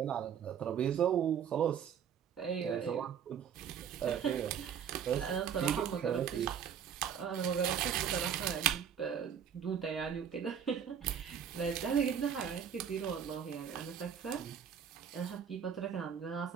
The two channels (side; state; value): left; quieter; 8.2 dB